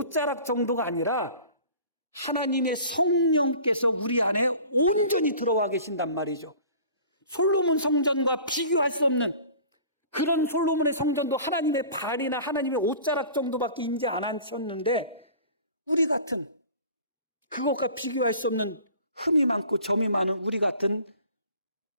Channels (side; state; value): both; inverted; correlation -0.45